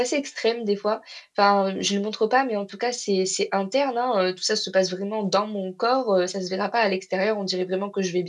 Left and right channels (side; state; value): both; identical; correlation 1.00